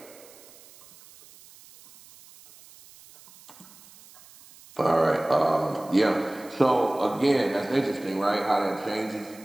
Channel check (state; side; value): noise; right; hiss, 23 dB below the sound